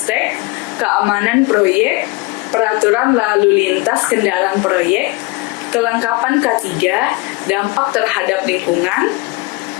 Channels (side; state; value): right; quieter; 24.6 dB